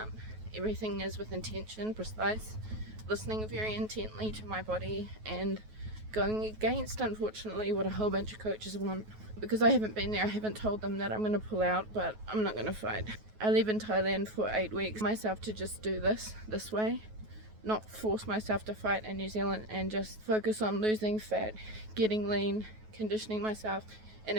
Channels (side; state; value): left; late; 9.3 ms